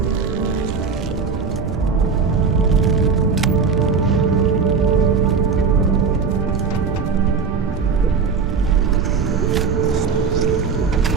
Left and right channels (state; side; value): quieter; left; 5.4 dB